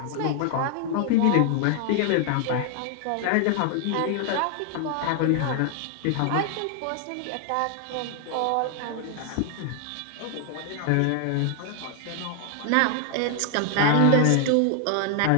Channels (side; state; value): both; different; correlation 0.00